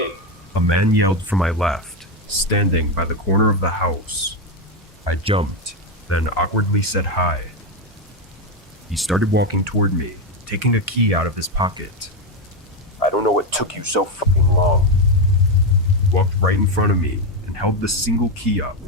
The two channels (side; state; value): both; normal; correlation 0.08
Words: a man yelled from my left, standing by the corner of the house. I jumped, then awkwardly said hi. He started walking toward me, taking a key out of his pocket. "I don't know what took you so fucking long." He walked right in front of me and held the single key up